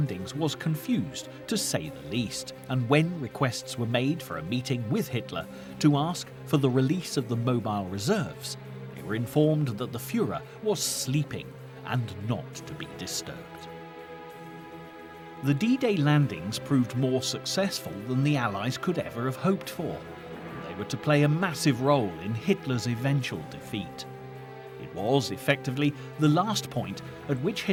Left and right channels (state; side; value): identical; both; correlation 1.00